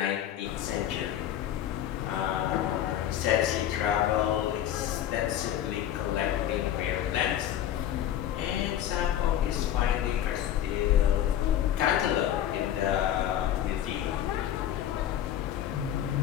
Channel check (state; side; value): quieter; right; 11.2 dB